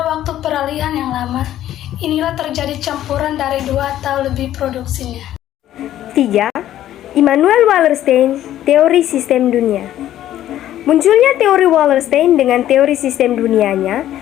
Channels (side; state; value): right; quieter; 12.5 dB